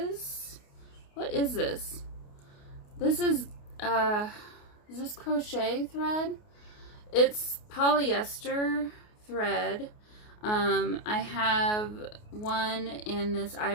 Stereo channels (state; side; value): late; right; 28 ms